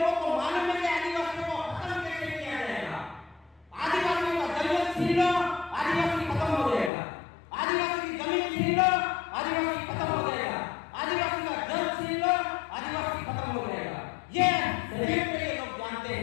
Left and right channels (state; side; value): drops out; right; at 6.9 s